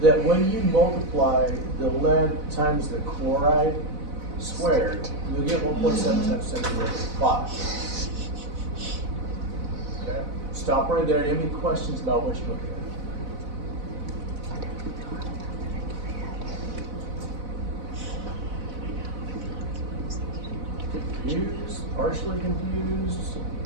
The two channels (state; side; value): late; left; 4.0 ms